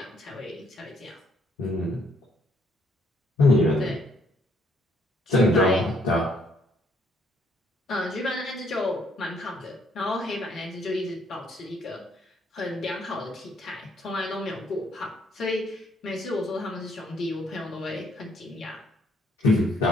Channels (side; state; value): both; normal; correlation 0.68